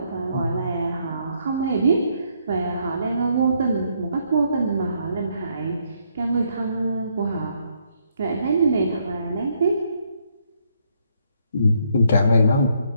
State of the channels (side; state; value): both; inverted; correlation -0.72